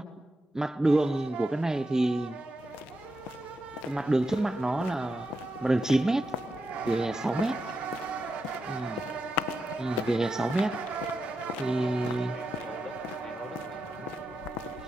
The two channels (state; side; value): normal; both; correlation 0.87